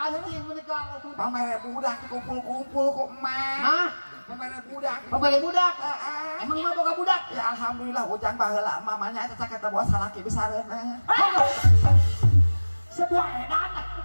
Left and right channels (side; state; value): both; inverted; correlation -1.00